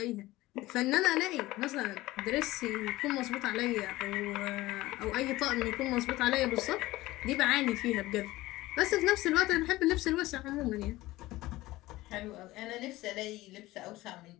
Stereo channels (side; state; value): right; quieter; 18.1 dB